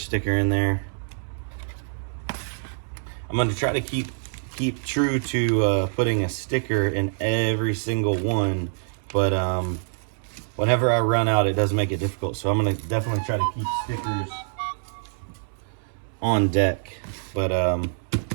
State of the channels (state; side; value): silent; left; 62 dB below the other